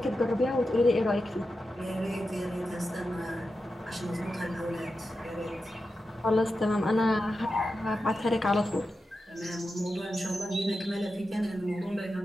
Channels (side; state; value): both; normal; correlation 0.90